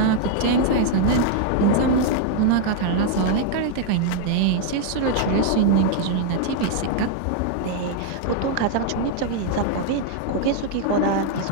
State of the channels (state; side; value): different; both; correlation 0.00